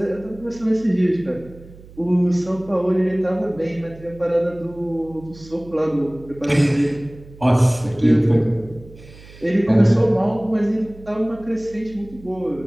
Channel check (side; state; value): right; noise; hum, 20 dB below the sound